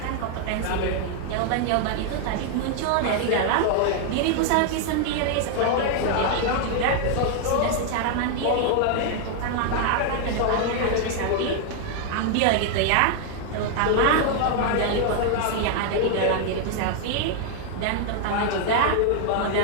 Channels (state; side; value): different; both; correlation 0.00